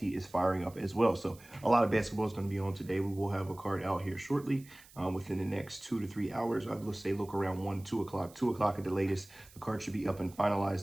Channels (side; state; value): right; noise; hiss, 23 dB below the sound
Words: is firing up as well. So a lot of basketball is going to be on today. We will have a card out here shortly within the next 2 to 3 hours. I'd say look around 1, 2 o'clock, 2 o'clock at the latest. The card should be up and